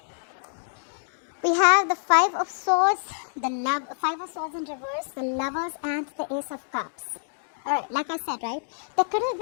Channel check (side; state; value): right; silent; digital silence